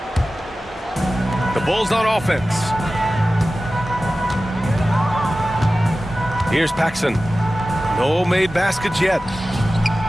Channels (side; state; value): both; normal; correlation 0.95